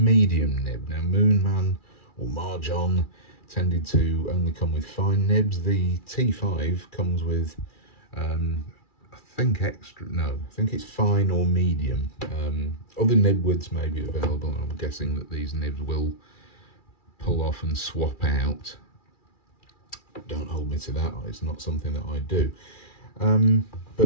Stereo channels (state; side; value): late; right; 2.4 ms